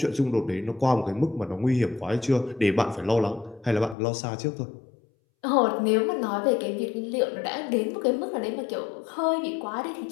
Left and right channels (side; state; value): right; drops out; at 4.0 s